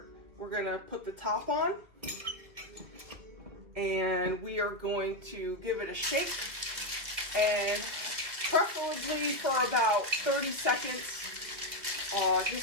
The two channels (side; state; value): left; late; 2.4 ms